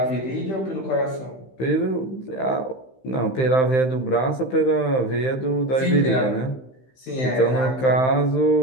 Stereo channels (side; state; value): right; late; 15 ms